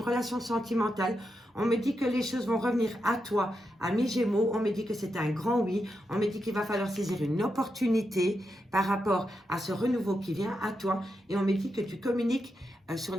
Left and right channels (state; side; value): normal; both; correlation 0.86